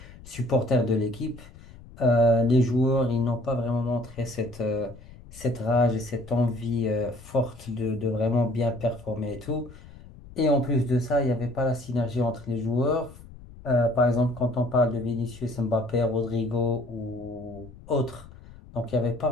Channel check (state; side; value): noise; left; rumble, 19 dB below the sound